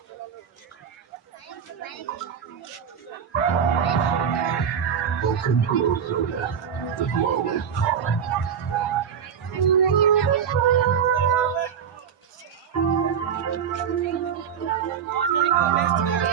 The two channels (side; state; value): left; quieter; 7.8 dB